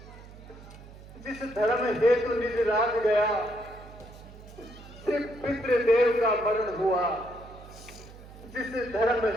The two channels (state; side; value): noise; right; hum, 18 dB below the sound